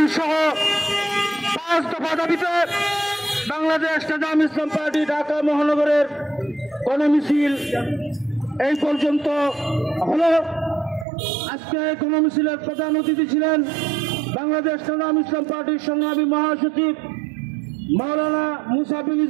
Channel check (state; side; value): drops out; left; at 11.1 s